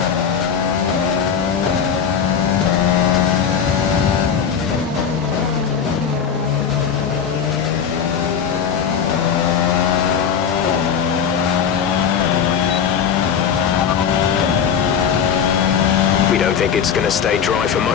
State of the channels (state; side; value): quieter; right; 7.4 dB